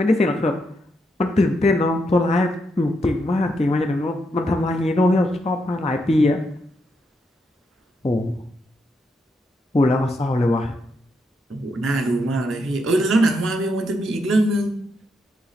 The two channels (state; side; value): normal; both; correlation 0.81